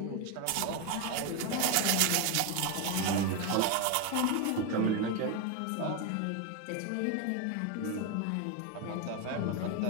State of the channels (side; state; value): both; different; correlation 0.02